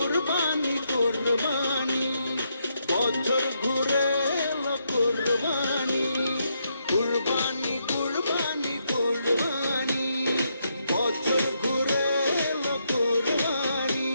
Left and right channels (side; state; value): both; inverted; correlation -0.78